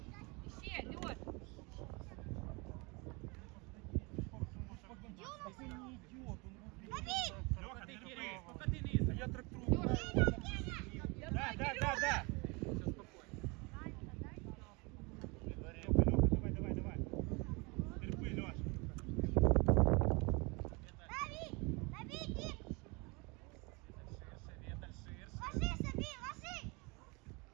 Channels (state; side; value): quieter; left; 28.2 dB